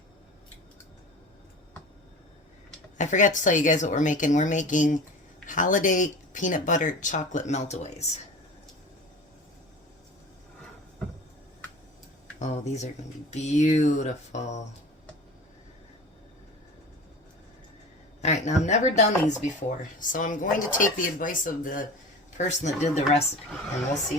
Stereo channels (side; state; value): both; normal; correlation 0.36